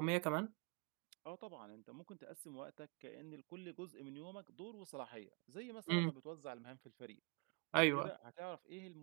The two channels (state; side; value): quieter; left; 33.3 dB